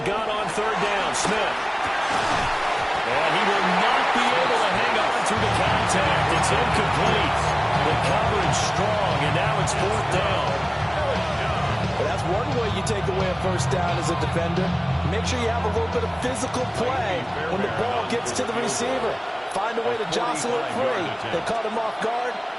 gun on third down, Smith. And he will not be able to hang on through the contact. It's incomplete. The coverage strong, and now it's 4th down. Well, that's one way you take away a first down as a defender. Make sure you have a little bit of physical play when the ball gets to the receiver. Find a way to jostle it free. They caught him off guard,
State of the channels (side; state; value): both; identical; correlation 1.00